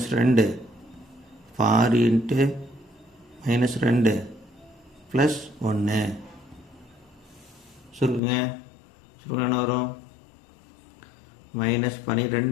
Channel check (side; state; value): right; drops out; at 8.2 s